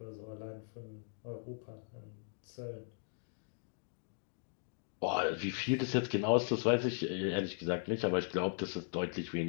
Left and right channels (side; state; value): right; silent; 52 dB below the other